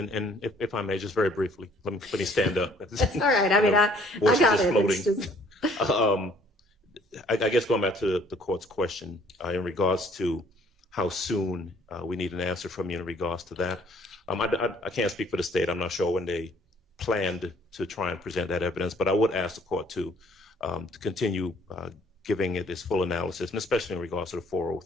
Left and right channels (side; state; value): both; normal; correlation 0.60